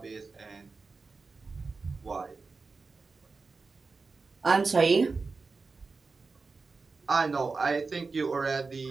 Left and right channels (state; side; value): quieter; left; 4.3 dB